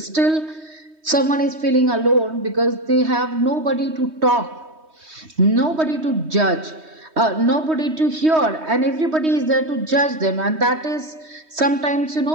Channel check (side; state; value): left; late; 3.2 ms